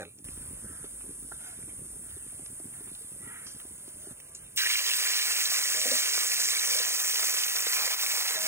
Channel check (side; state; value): left; late; 0.13 ms